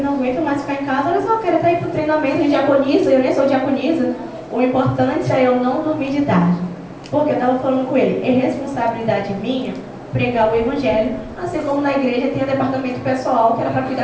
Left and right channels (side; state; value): both; identical; correlation 1.00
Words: não aguento mais ficar em casa, olha só, eu quero até ir para o treinamento de diaconisa, eu nem sou diaconisa. O importante é eu não dormir de tarde. Porque eu estava falando com ele, é responsabilidade minha pregar o evangelho, assim como na igreja tem o departamento pessoal que